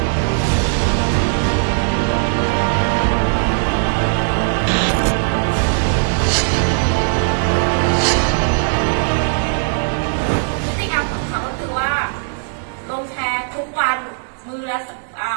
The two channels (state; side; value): silent; left; digital silence